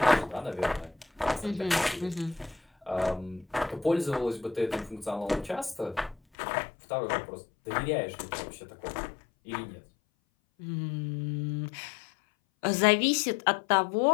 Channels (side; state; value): right; drops out; at 6.2 s